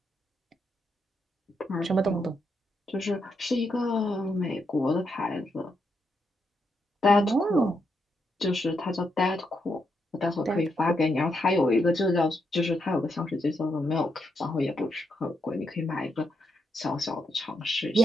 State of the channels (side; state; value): both; normal; correlation 0.80